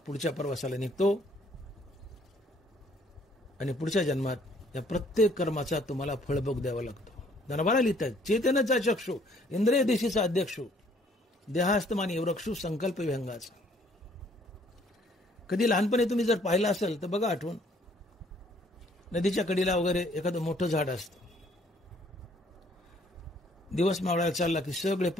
प्रवासाला निघतो आणि पुढच्या जन्मात या प्रत्येक कर्माचा तुम्हाला फळभोग द्यावा लागतो. धनबारा लिहितात चेतनेचा चक्षु इंद्रिय दिशेचा अध्यक्षु देहास्तमानी वृक्षु संकल्प विहंगाचा. कधी लहानपणी तुम्ही जर पाहिलं असेल तर बघा आठवण, नदीच्या कडेला वगैरे एखादं मोठं झाड असतं, दिवस मावळायला चालला की सगळे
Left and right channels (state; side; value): normal; both; correlation 0.62